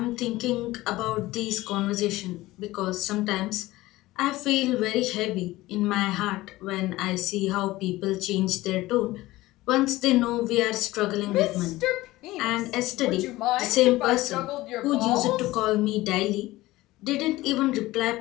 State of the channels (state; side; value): quieter; right; 18.1 dB